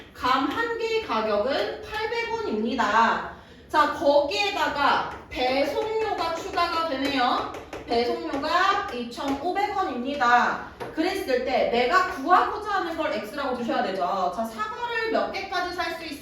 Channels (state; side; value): identical; both; correlation 1.00